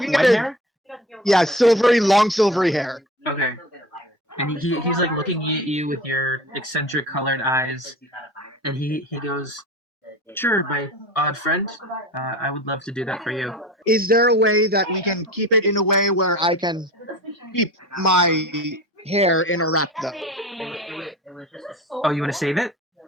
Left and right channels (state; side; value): normal; both; correlation 0.35